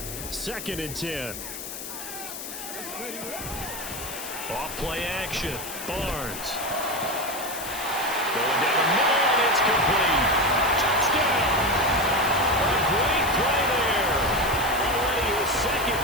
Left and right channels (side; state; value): left; noise; hiss, 9 dB below the sound